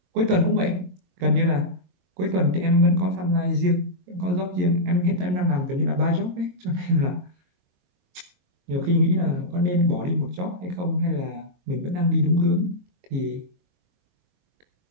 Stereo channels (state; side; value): late; left; 22 ms